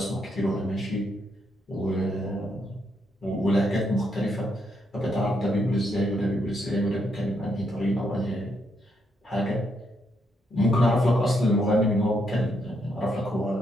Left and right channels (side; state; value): both; normal; correlation 0.77